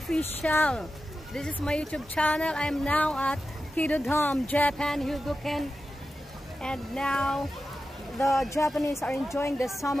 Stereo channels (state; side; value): normal; both; correlation 0.92